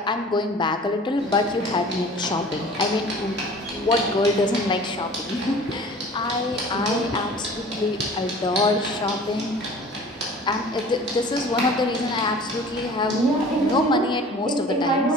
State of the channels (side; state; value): both; normal; correlation 0.45